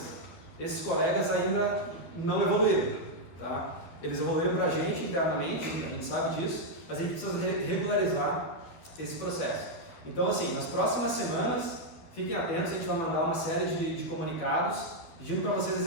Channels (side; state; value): right; late; 12 ms